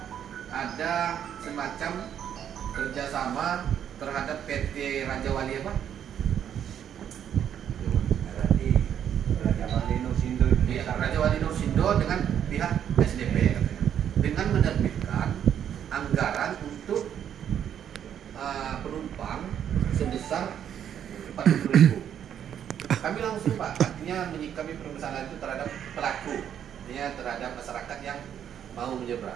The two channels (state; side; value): quieter; left; 9.3 dB